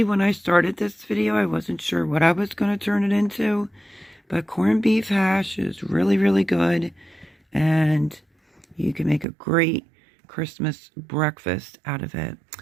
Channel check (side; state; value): left; drops out; at 9.2 s